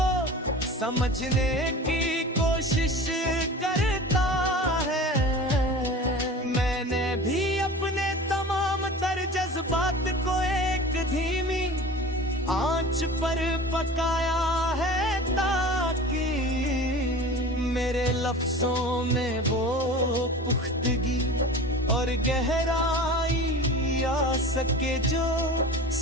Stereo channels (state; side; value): normal; both; correlation 0.37